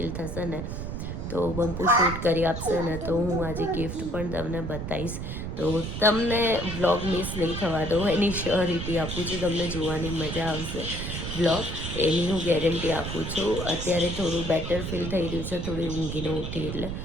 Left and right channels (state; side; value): noise; right; rumble, 5 dB below the sound